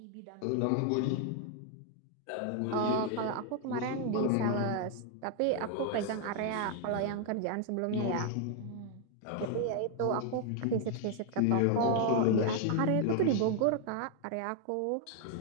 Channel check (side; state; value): both; different; correlation 0.00